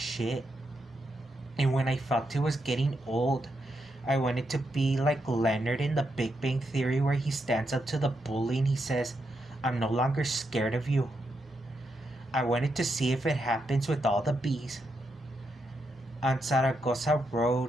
and when I felt it was getting old, I wanted to be like Leonard in the Big Bang Theory where he stands up to the bully and he says, I'm no longer scared of you. I wanted to see if it happens with all the bees. On Zaragoza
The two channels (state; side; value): normal; both; correlation 0.82